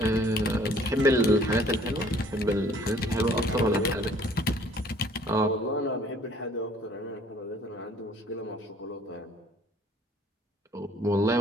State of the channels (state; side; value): normal; both; correlation 0.56